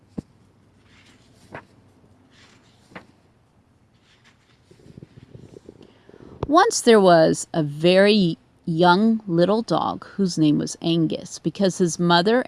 Once there was a very young little dog whose name was Angus because his mother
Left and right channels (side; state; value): both; identical; correlation 1.00